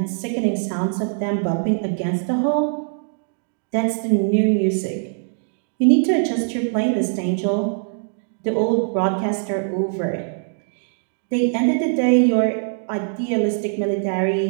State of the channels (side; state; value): left; silent; digital silence